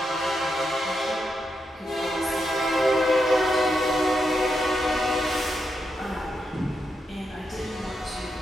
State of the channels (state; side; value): normal; both; correlation 0.84